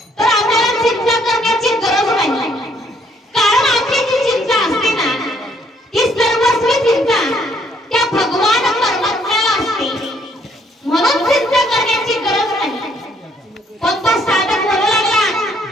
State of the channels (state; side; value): normal; both; correlation 0.67